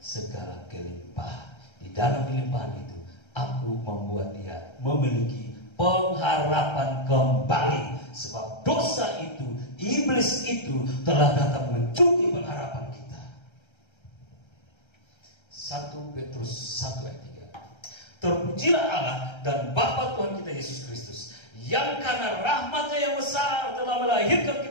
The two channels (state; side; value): late; right; 1.3 ms